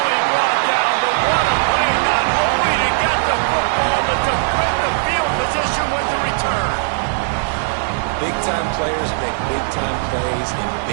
brought down, but what a play, not only to get the football, but to put the field position with the return. Big-time players make big-time plays in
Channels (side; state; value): left; silent; digital silence